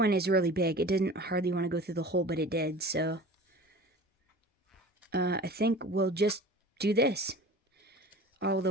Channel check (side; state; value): both; normal; correlation 0.40